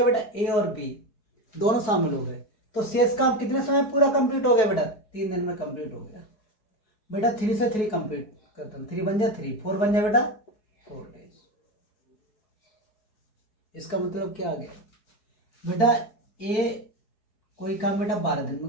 बेटा? ए और बी दोनों शामिल हो गए। तो शेष काम कितने समय पूरा कंप्लीट हो गया बेटा? 3 दिन में कंप्लीट हो गया बेटा। 3 से 3 कंप्लीट करता हूँ, 3 बन जाए 3, 4 बन जाए बेटा 4 डेज। इसका मतलब क्या आ गया बेटा? ए कोई काम बेटा 12 दिन में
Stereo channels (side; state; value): right; late; 4.7 ms